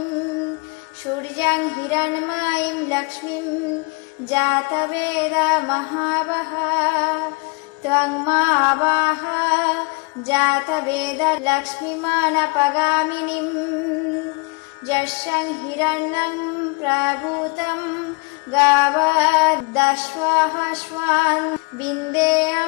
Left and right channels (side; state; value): right; quieter; 29.6 dB